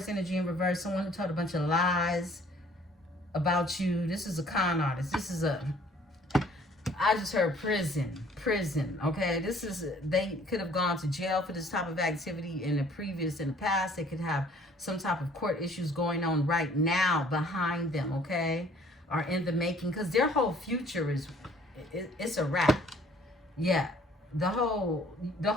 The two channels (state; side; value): normal; both; correlation 0.57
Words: energy in reverse, someone who told a bunch of lies about you. This is a con artist. This is I just heard prison, okay? This is, they could have gone to jail for this type of activity in the past. They could have some type of court issues going on right now behind them, okay? Or in the making, because their whole future is, it's a wrap. Yeah, the whole